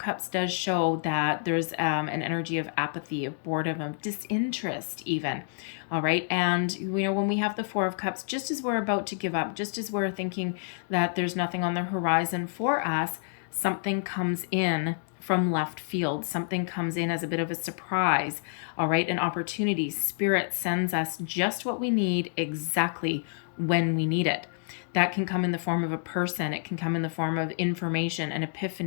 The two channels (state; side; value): silent; right; digital silence